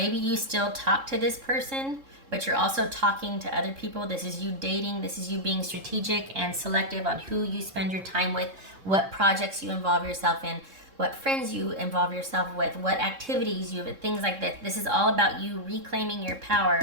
you still talk to this person, but you're also talking to other people. This is you dating. This is you being strategic and selective on who you spend your time with, what projects you involve yourself in, what friends you involve yourself with, what activities you have, things like that. This is all about you reclaiming your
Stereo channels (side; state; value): left; late; 3.7 ms